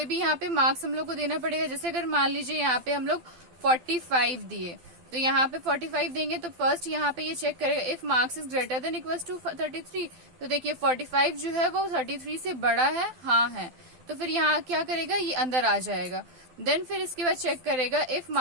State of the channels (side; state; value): left; late; 12 ms